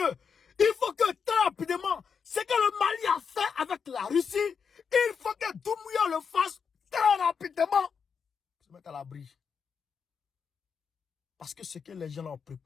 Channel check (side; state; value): right; quieter; 6.3 dB